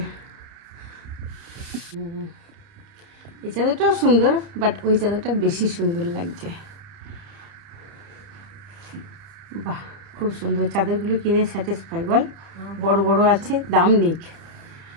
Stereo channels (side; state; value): left; late; 30 ms